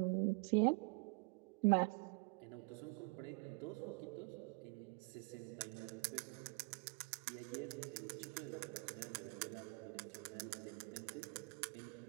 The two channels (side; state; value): left; quieter; 29.0 dB